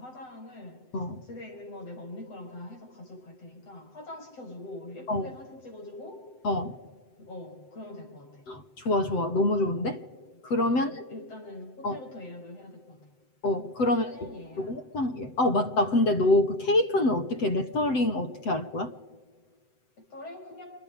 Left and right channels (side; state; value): right; late; 7.9 ms